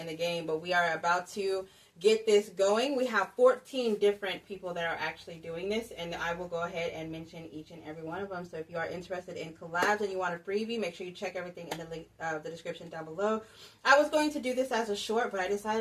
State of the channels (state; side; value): identical; both; correlation 1.00